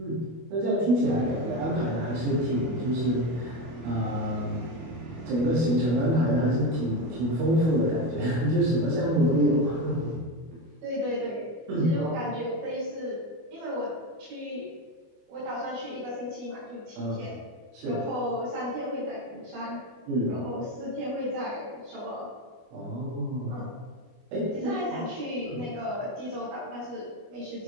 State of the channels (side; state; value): left; late; 25 ms